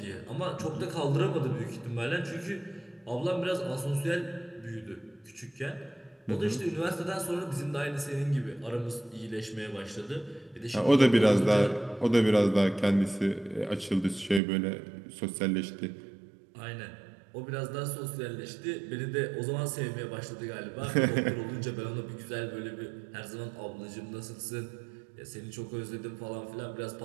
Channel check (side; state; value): left; drops out; at 14.4 s